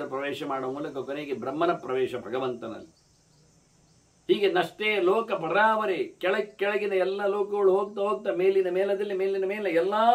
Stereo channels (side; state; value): both; identical; correlation 1.00